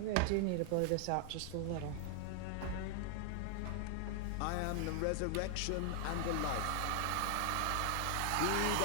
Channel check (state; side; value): different; both; correlation 0.00